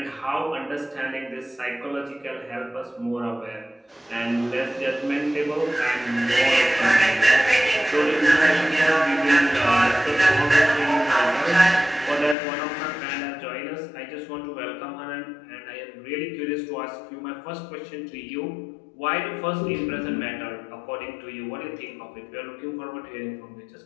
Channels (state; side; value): drops out; right; at 12.4 s